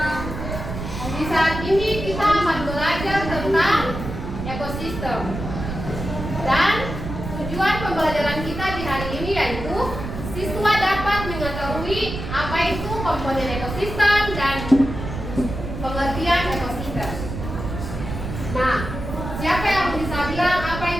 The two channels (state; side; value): noise; right; rumble, 7 dB below the sound